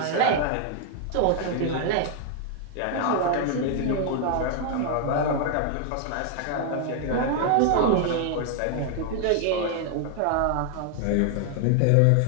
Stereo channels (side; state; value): both; different; correlation 0.00